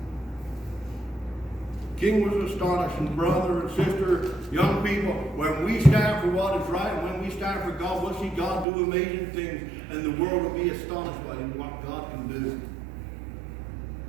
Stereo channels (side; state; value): left; drops out; at 8.7 s